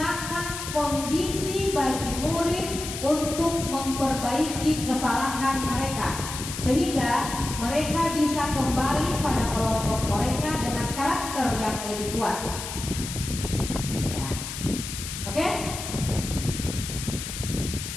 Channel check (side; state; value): left; noise; hiss, 7 dB below the sound